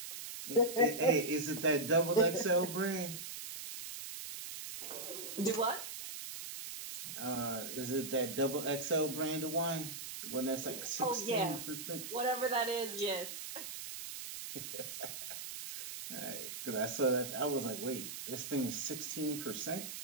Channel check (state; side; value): noise; right; hiss, 8 dB below the sound